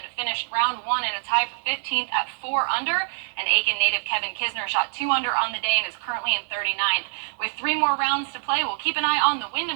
finished round 1 in a tie for 15th at 4 under, and Aiken native Kevin Kisner shot 2 under on the day and is currently in 39th. With 3 more rounds to play, we'll keep an eye on the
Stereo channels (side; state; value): left; silent; digital silence